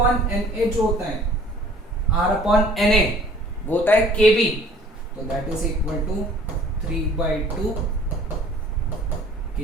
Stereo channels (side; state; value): both; normal; correlation 0.53